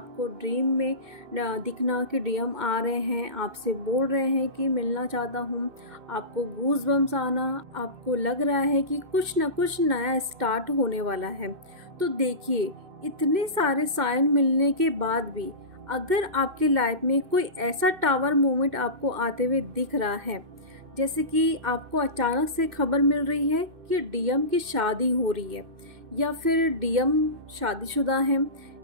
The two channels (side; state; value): left; late; 2.6 ms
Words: ड्रीम में दिखना कि डीएम आ रहे हैं, आपसे बोल रहे हैं कि मिलना चाहता हूँ। आपको गूज बम्स आना, आपको लग रहा है कि कुछ ना कुछ नया स्टार्ट होने वाला है। तो देखिए, इतने सारे साइन मिलने के बाद भी अगर आपकी लाइफ में कोई ऐसा टावर मोमेंट आपको आते हुए दिख रहा है, जैसे कि आपको अचानक से खबर मिल रही है कि डीएम की शादी हो रही है या फिर डीएम शादीशुदा हैं